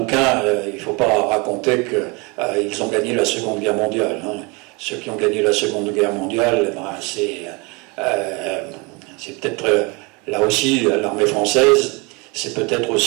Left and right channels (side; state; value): left; quieter; 28.4 dB